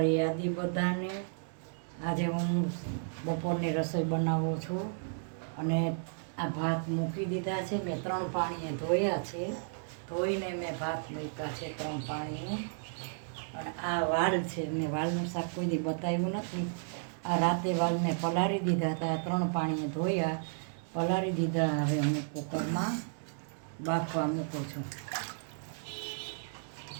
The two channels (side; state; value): left; silent; digital silence